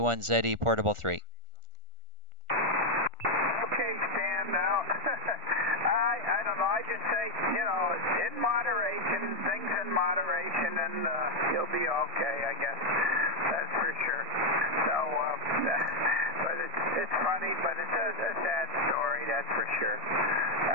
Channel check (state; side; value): late; left; 1.4 ms